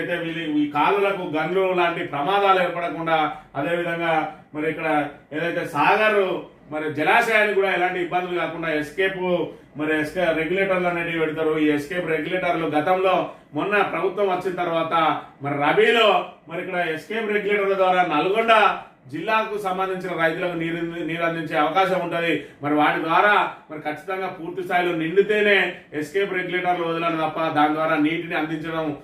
ఈ కాలువలకు గన్లు లాంటి ప్రమాదాలు ఏర్పడకుండా, అదేవిధంగా మరి ఇక్కడ ఏదైతే సాగర్ మరి జలాశయానికి కూడా ఎలాంటి ఇబ్బందులు కాకుండా ఎస్కేప్ రెగ్యులేటర్లు అనేవి పెడతారు. ఈ ఎస్కేప్ రెగ్యులేటర్లు గతంలో మొన్న ప్రభుత్వం వచ్చిన తర్వాత మరి రబీలో మరి ఇక్కడ ఎస్కేప్ రెగ్యులేటర్ల ద్వారా నల్గొండ జిల్లాకు సంబంధించిన రైతులకు నీరు అందించే అవకాశం ఉంటుంది. మరి వాటి ద్వారా మరి ఖచ్చితంగా పూర్తి స్థాయిలో నిండితేనే ఎస్కేప్ రెగ్యులేటర్లు వదలను తప్ప దాని ద్వారా నీటిని అందించడం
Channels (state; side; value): identical; both; correlation 1.00